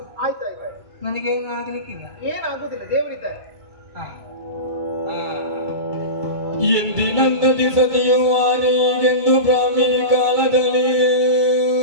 ಆಯ್ತಾಯ್ತು. ನನಗೇನು ಆಗ್ಲಿಕ್ಕಿಲ್ಲ. ಏನಾಗುದಿಲ್ಲ, ದೇವರಿದ್ದಾರೆ. ಎಂದಿನಂದದಿ ಸತಿಯು ಆನೆಗೆಂದು ಬ್ರಾಹ್ಮಿ ಕಾಲದಲ್ಲಿ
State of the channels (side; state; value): left; late; 2.3 ms